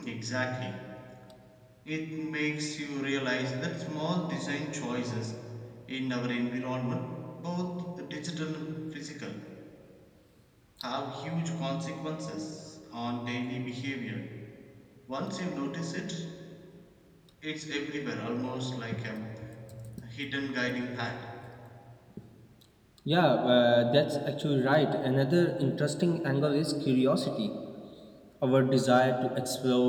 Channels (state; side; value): identical; both; correlation 1.00